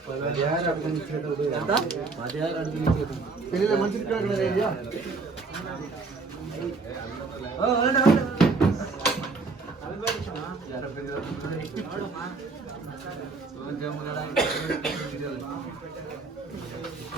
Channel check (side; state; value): left; quieter; 4.1 dB